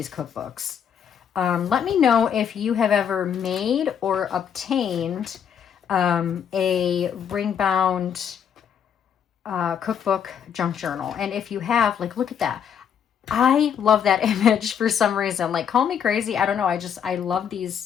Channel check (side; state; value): right; quieter; 8.2 dB